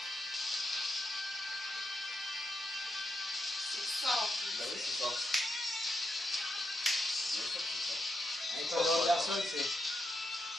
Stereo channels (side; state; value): both; normal; correlation 0.83